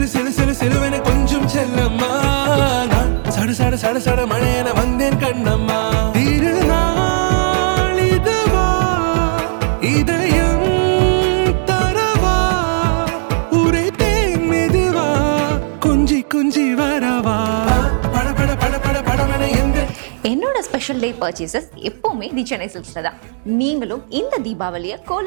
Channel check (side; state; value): left; silent; digital silence